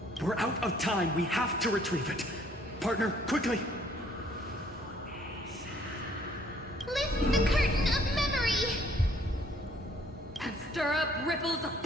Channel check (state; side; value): normal; both; correlation 0.62